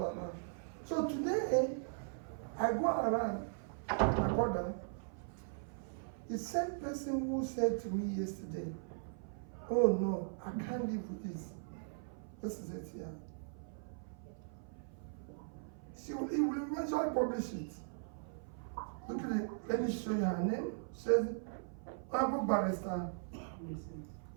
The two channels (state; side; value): silent; left; 52 dB below the other